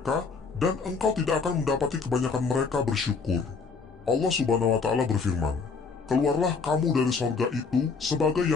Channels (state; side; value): quieter; right; 4.9 dB